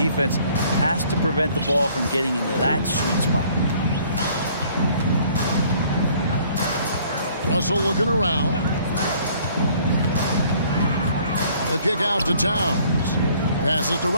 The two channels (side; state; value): both; inverted; correlation -0.58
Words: has to prevent the ball from getting into that sweet spot. Russell looking around. The kick out to Towns. Passes to